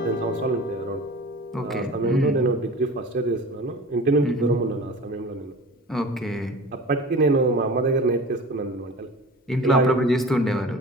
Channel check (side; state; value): both; normal; correlation 0.38